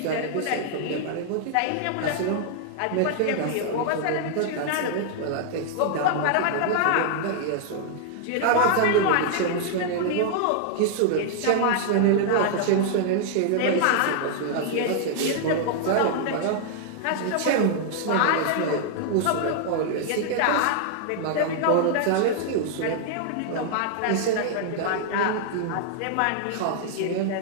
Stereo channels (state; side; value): different; both; correlation -0.01